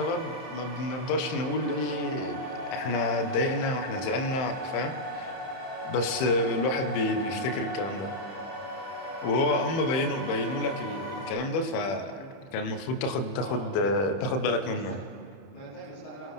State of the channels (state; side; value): late; right; 31 ms